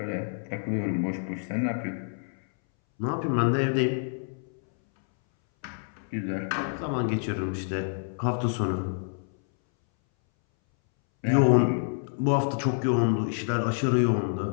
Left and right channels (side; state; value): right; silent; 60 dB below the other